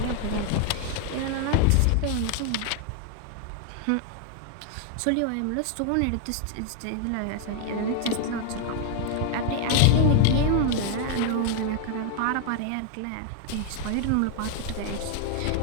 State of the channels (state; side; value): different; both; correlation 0.00